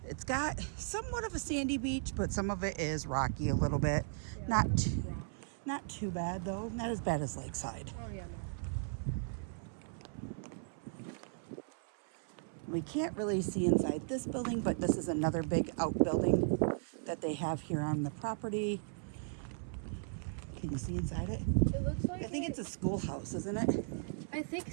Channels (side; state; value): left; silent; 53 dB below the other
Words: It's got somewhat of a sandy beach, but some of it is rocky a little bit. Not too bad though. Not as bad as Lakeside. Oh yeah, no. We can't really see inside this building, but this is another big outbuilding that they have here on the property. Can you see inside it? It looks like I think it's a schoolhouse, isn't it? I think